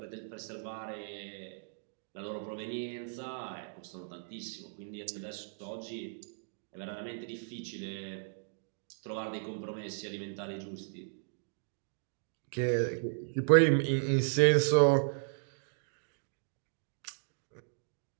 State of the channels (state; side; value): silent; left; digital silence